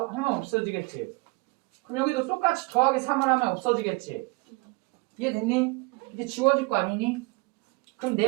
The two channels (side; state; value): left; quieter; 27.3 dB